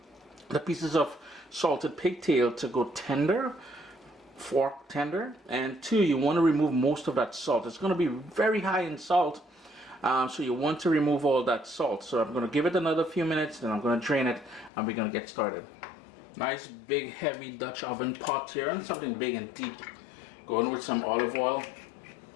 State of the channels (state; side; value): drops out; right; at 14.7 s